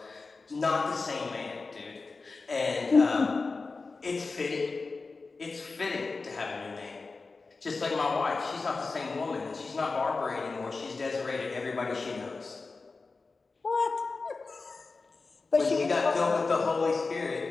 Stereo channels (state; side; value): quieter; right; 4.0 dB